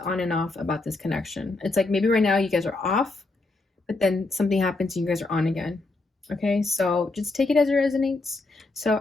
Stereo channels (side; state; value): right; quieter; 3.3 dB